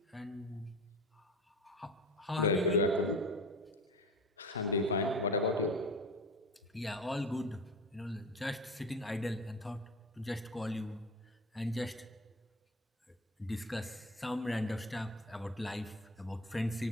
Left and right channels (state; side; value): normal; both; correlation 0.32